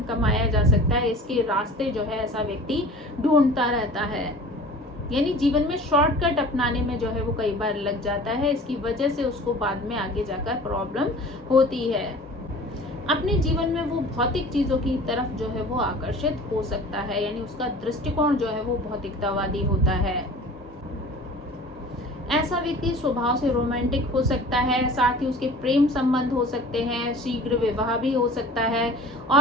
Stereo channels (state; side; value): normal; both; correlation 0.43